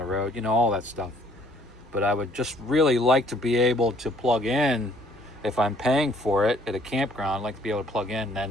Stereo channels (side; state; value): both; normal; correlation 0.62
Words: road, all that stuff. But I would just really like to be able to plug in, if I'm paying for it at a campground, I'd like to be able to plug in,